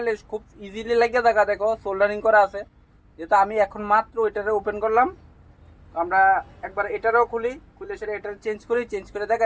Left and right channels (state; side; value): identical; both; correlation 1.00